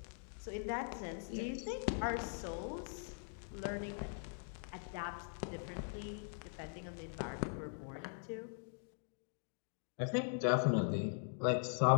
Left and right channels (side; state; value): right; silent; digital silence